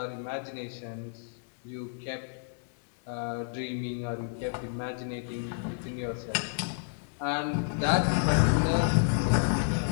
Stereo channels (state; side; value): silent; right; digital silence